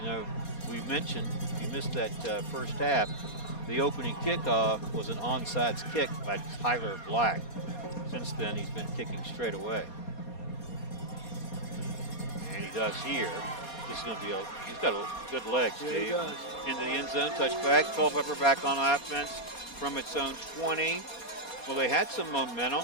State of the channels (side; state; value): right; late; 4.2 ms